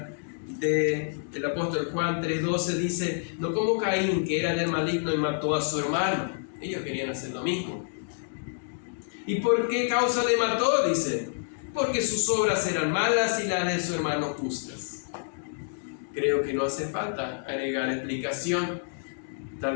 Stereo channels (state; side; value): silent; right; digital silence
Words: del apóstol Juan 3:12, dice: no como Caín, que era del maligno y mató a su hermano. Ellos querían hacer lo mismo. ¿Y por qué causa le mató? Dice: porque sus obras eran malas y las de su hermano justas. Creo que no hace falta agregar explicación.